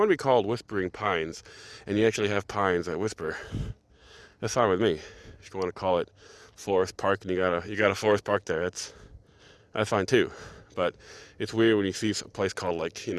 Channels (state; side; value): identical; both; correlation 1.00